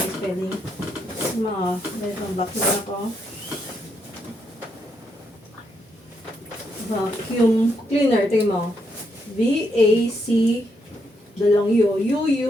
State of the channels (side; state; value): both; normal; correlation 0.78